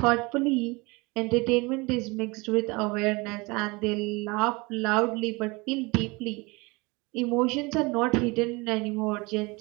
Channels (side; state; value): left; quieter; 25.7 dB